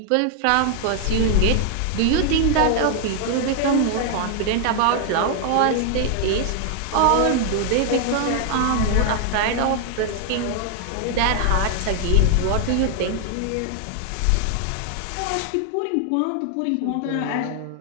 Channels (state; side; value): different; both; correlation 0.00